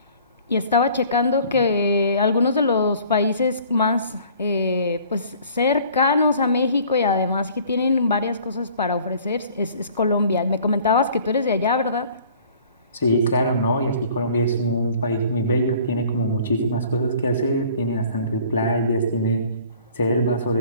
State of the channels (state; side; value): inverted; both; correlation -0.52